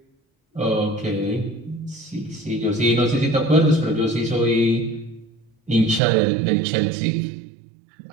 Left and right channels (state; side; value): drops out; left; at 6.0 s